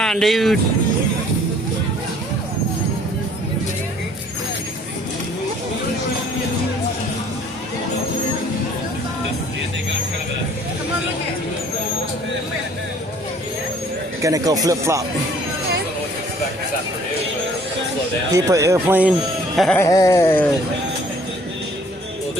dude? Gonna go flip flop. People airplane. Well, the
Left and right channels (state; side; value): normal; both; correlation 0.57